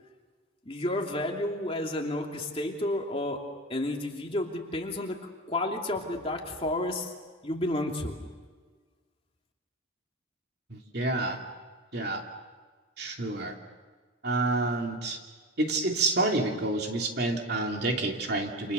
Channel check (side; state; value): both; normal; correlation 0.27